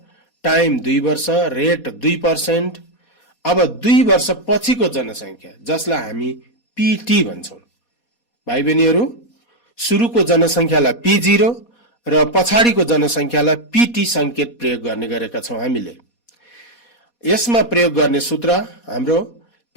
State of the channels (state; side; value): late; right; 4.2 ms